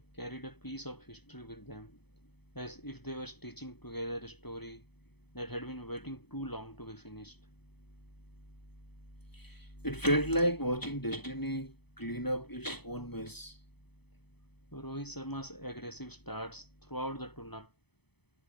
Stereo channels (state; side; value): late; right; 0.98 ms